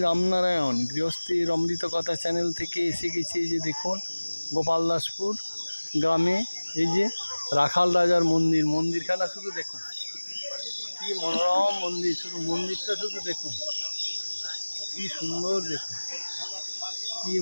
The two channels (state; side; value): inverted; both; correlation -1.00